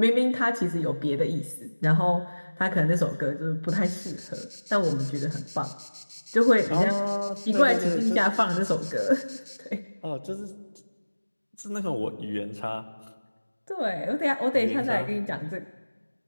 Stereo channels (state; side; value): inverted; both; correlation -1.00